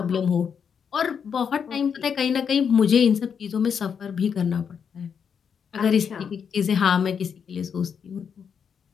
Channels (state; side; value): quieter; right; 7.0 dB